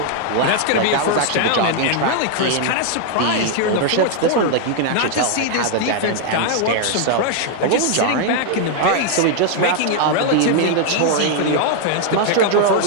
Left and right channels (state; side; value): different; both; correlation 0.00